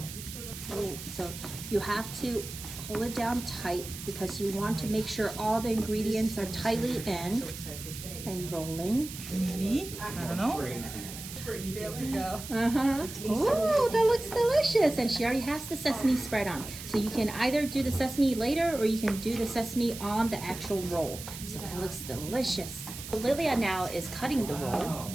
Roll. So you have to hold it down tight because you want to make sure all the ingredients are tightly in and rolling. Maybe, I don't know. There we go. Oh, that looks delicious. And she already has the sesame spread on. So you can either do the sesame later or you can do the sesame on the actual roll. So that looks delicious. Lilia now is cutting the roll.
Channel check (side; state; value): right; noise; hiss, 11 dB below the sound